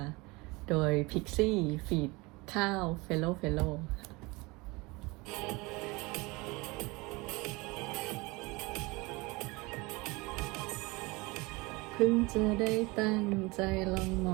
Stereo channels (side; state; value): left; quieter; 24.6 dB